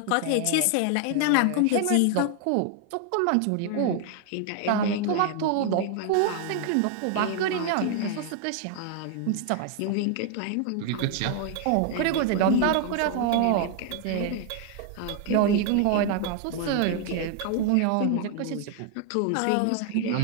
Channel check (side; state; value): both; different; correlation 0.00